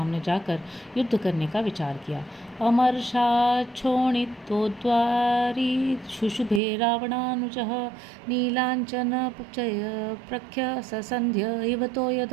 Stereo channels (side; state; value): left; drops out; at 6.6 s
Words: जाकर युद्ध करने का विचार किया। अमर्षाच्छोणितोद्वारी शुशुभे रावणानुजः नीलाञ्चनपचय प्रख्य ससंध्य इव तो